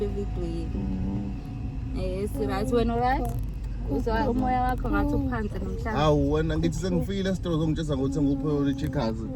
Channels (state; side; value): identical; both; correlation 1.00